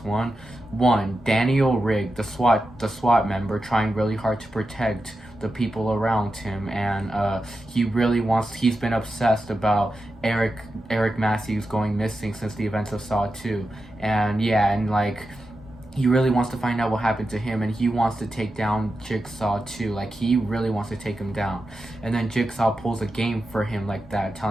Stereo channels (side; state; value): both; normal; correlation 0.90